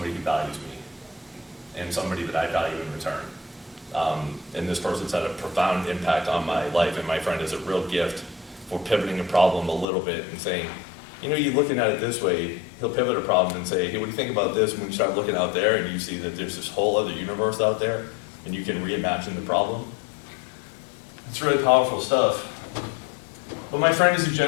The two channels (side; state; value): right; drops out; at 9.9 s